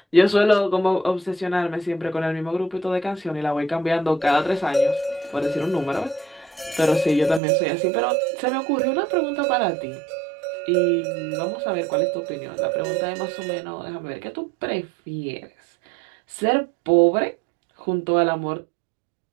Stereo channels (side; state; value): left; drops out; at 7.4 s